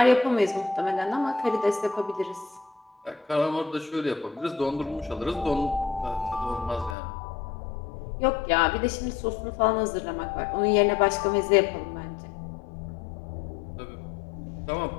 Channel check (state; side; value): drops out; right; at 7.0 s